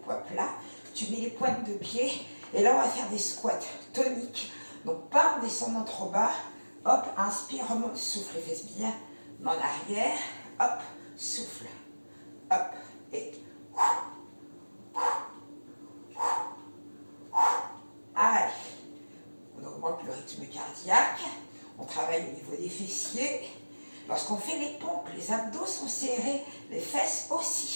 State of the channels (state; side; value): inverted; both; correlation -1.00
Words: poids plats. Tu mets les pointes de pied. Et là, on va faire des squats toniques. Donc, pas en descendant trop bas. Hop, inspire, remonte, souffle les fesses bien en arrière. Hop, souffle. Hop, et allez, on augmente le rythme cardiaque, on travaille au niveau des fessiers. Lorsqu'on fait les pompes, les abdos sont serrés, les fesses